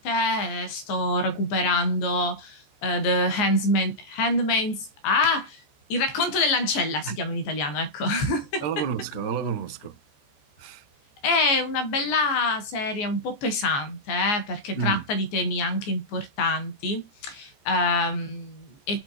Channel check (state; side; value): late; right; 14 ms